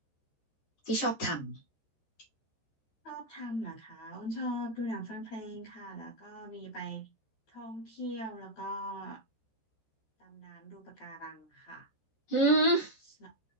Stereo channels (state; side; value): late; right; 13 ms